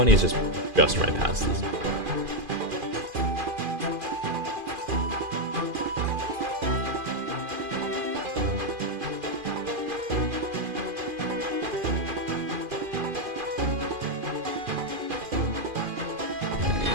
is just right past this.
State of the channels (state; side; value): late; left; 2.5 ms